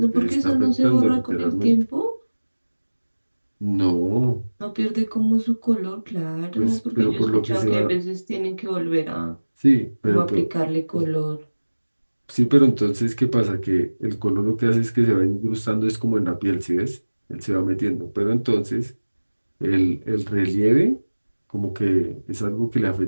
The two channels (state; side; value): inverted; both; correlation -1.00